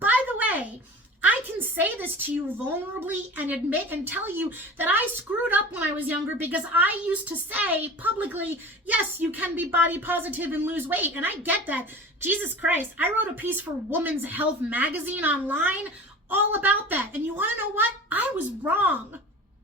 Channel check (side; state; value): both; normal; correlation 0.37